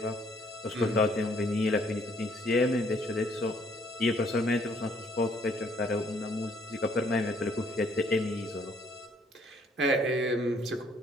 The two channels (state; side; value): normal; both; correlation 0.65